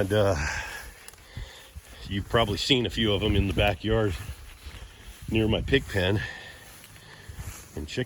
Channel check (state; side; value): identical; both; correlation 1.00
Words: you've probably seen a few of them in the backyard near my pig pen and